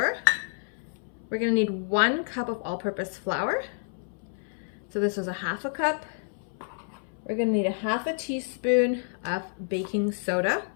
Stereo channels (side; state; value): right; silent; 59 dB below the other